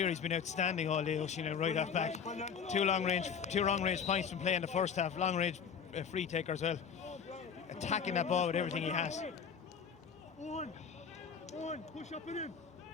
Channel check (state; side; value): quieter; right; 6.8 dB